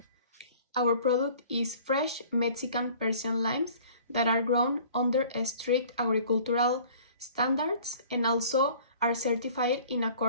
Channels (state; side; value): inverted; both; correlation -0.49